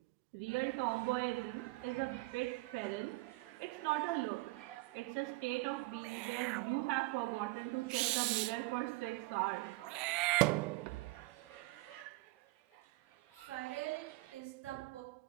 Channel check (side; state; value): left; quieter; 23.1 dB